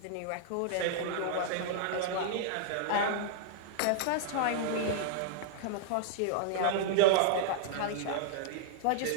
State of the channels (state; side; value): different; both; correlation -0.01